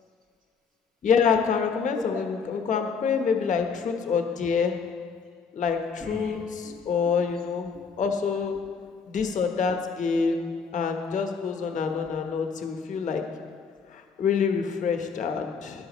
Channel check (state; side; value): quieter; right; 5.7 dB